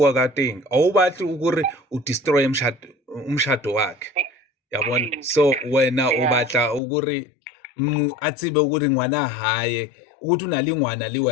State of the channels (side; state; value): right; drops out; at 6.8 s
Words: ka teng a o batle gore o destroy umshado wakhe yabona. So wena o batla gore a tsebe gore ngwana hae ukuthi una le ngwana le